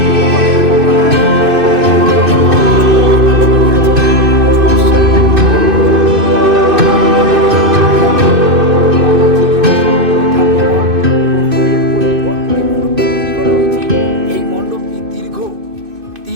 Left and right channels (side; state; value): left; late; 2.6 ms